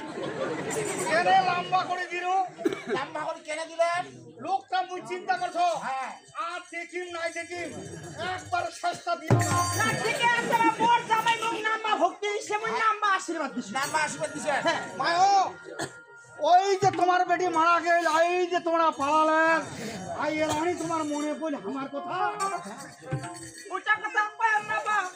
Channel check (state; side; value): identical; both; correlation 1.00